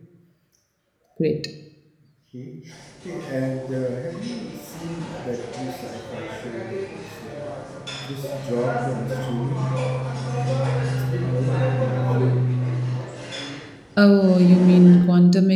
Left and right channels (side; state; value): both; identical; correlation 1.00